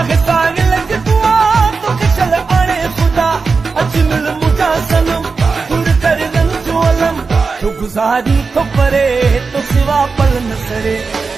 साहिल की दुआ तो किशल आने खुदा। अजमल मुझा सनम दूर कर रंग जो अलम, तो गुजारी तो परे तो सिवा पल न सरे,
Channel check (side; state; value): left; quieter; 4.6 dB